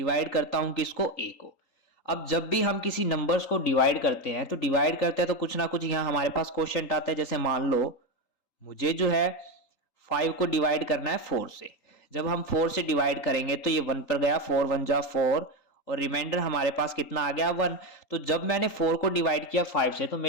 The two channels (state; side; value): late; right; 3.8 ms